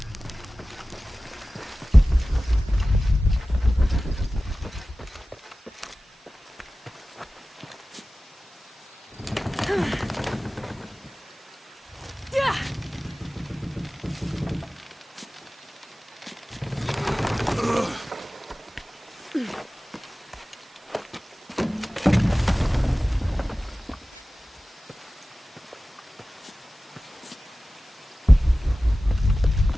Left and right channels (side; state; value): both; normal; correlation 0.96